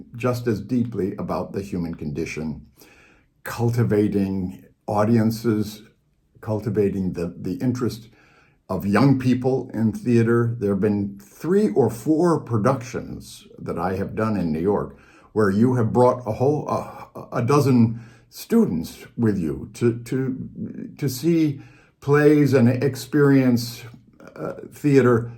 just as deeply about the human condition, cultivating audiences, cultivating the interest of young people in theater. There have been 3 or 4 productions that I have done in New York where you have brought a dozen students with you to see plays and experience theater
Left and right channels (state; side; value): identical; both; correlation 1.00